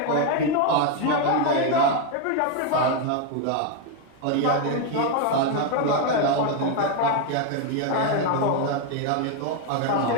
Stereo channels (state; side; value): different; both; correlation 0.01